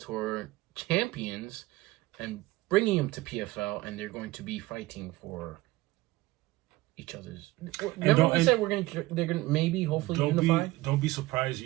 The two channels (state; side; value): quieter; left; 18.8 dB